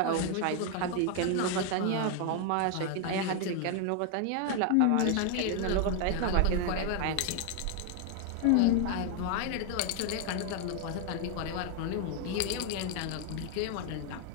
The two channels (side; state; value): both; different; correlation 0.01